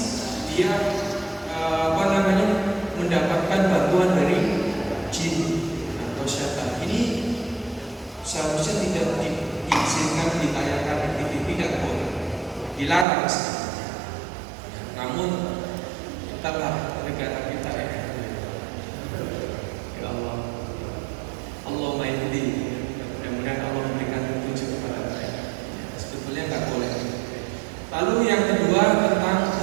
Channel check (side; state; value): left; drops out; at 13.1 s